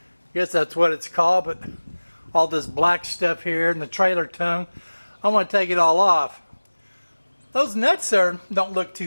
guess that's what it's called, but all this black stuff here and the trailer tongue, I want to take it all off. Those nuts there don't look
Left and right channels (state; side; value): inverted; both; correlation -1.00